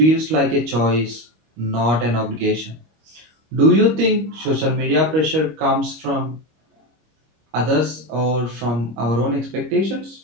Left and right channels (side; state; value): left; late; 25 ms